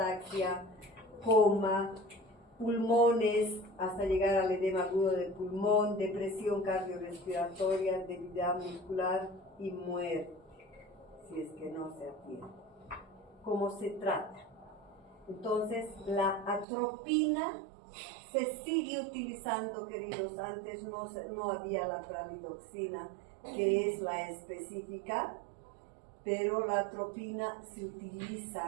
coma, pulmones, hasta llegar al edema agudo del pulmón, depresión cardiorrespiratoria, debilidad muscular y muerte, si es que no se atiende. ¿Cómo se trata? Entonces, la atropina se sigue utilizando, queridos. Antes no había la pralidoxina, que es la específica, pero la atropina se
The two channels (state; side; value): drops out; left; at 16.7 s